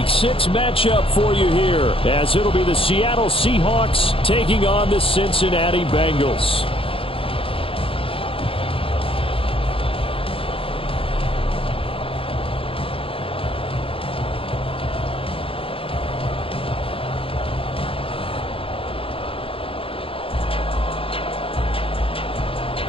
6 matchup for you here as it'll be the Seattle Seahawks taking on the Cincinnati Bengals.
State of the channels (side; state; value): right; late; 0.27 ms